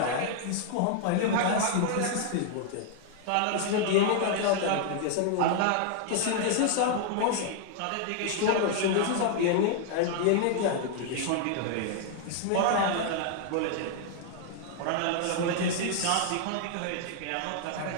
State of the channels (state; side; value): different; both; correlation 0.00